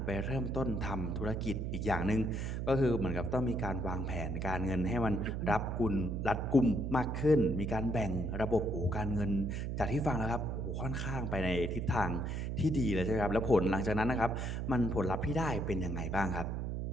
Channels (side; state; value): right; noise; hum, 2 dB below the sound